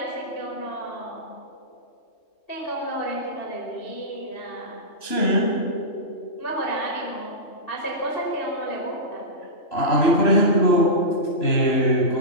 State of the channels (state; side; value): late; right; 3.0 ms